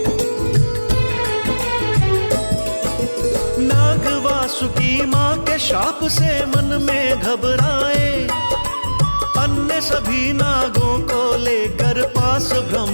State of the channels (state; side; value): inverted; both; correlation -1.00